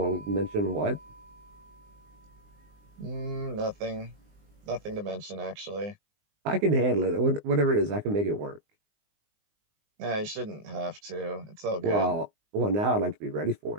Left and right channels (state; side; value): late; left; 19 ms